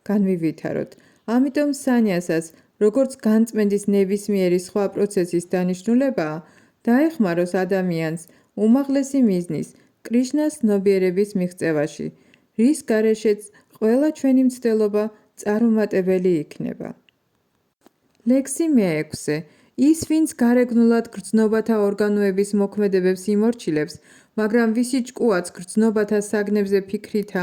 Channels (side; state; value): both; identical; correlation 1.00